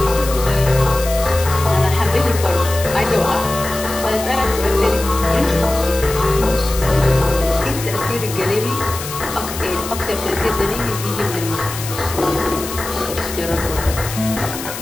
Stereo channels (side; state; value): left; noise; hiss, 9 dB below the sound